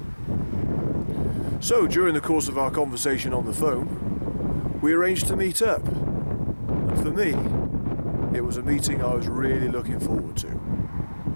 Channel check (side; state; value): both; inverted; correlation -1.00